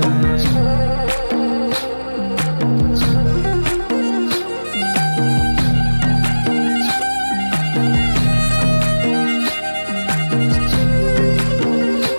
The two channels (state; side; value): inverted; both; correlation -1.00